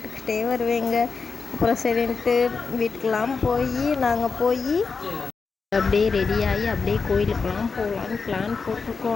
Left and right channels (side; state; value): right; quieter; 4.9 dB